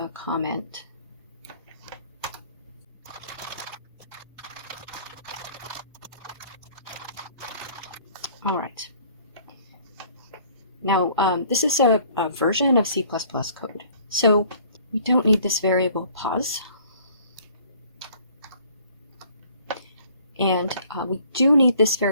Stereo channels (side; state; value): both; inverted; correlation -0.55